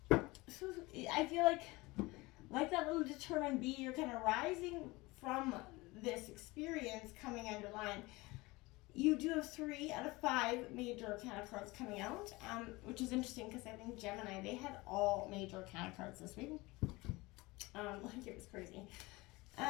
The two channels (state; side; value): quieter; right; 22.3 dB